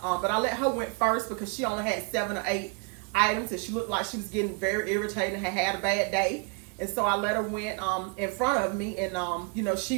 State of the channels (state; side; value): quieter; left; 34.0 dB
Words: I let her went first because she only had 7 or 8 items. And she looked like she was getting very irritated and had a bad day. And so I let her went in front of me, and she